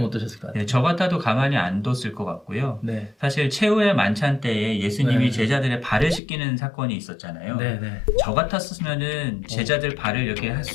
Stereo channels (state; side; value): drops out; right; at 6.2 s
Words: 어떠셨을 것 같아요? 네, 저 같아도 가만히 안 뒀을 것 같고요. 네. 사실 최후의 만찬 때에 예수님이 네. 제자들의 발을 씻기는 사건이 있었잖아요. 네, 네. 저 같았으면은 제자들 발을 이렇게